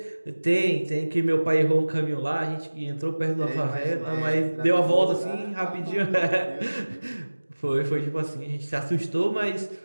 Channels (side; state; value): both; inverted; correlation -1.00